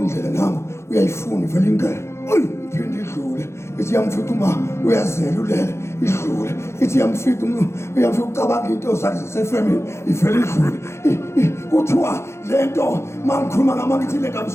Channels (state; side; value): late; right; 0.13 ms